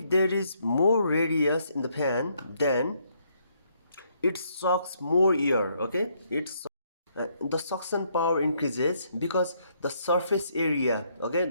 there is more radius in the fan, then it sucks more air. Okay, the suction power increases because the surface area, okay,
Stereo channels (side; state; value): both; inverted; correlation -0.71